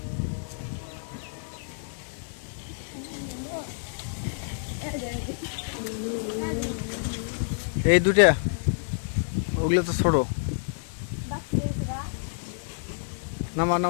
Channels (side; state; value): right; silent; digital silence